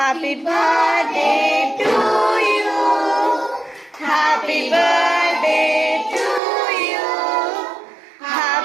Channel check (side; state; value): left; drops out; at 6.4 s